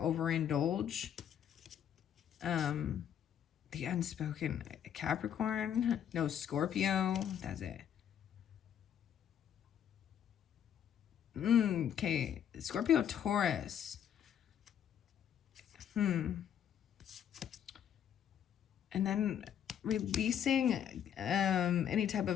The unspoken Capricorn. No, Scorpio. That's it. Okay. Scorpio, Taurus. And then releasing any type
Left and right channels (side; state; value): right; quieter; 9.3 dB